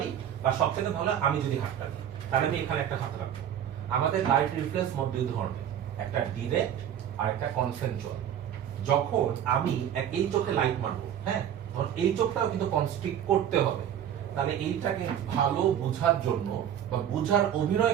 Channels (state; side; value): quieter; left; 9.8 dB